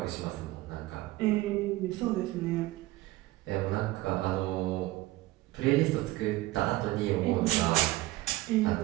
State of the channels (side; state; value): left; quieter; 18.3 dB